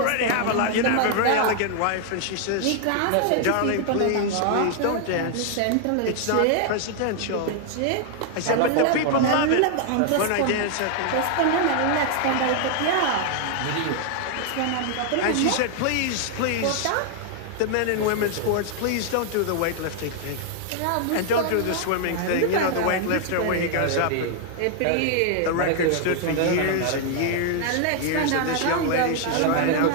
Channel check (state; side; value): different; both; correlation 0.00